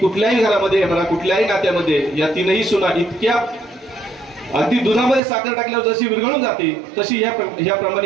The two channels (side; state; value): left; drops out; at 5.2 s